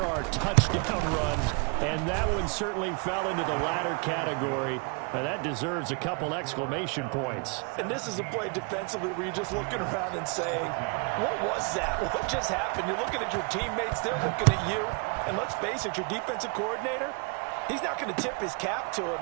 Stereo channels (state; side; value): quieter; left; 33.1 dB